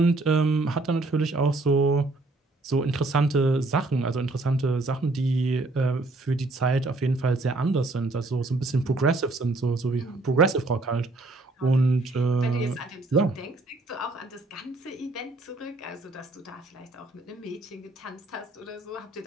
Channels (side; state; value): left; quieter; 3.1 dB